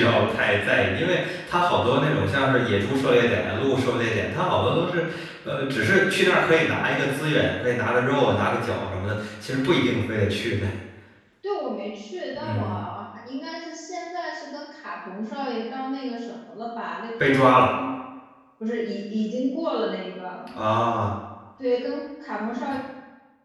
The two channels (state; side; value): identical; both; correlation 1.00